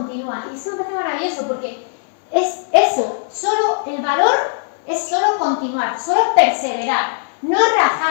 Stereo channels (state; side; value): silent; right; digital silence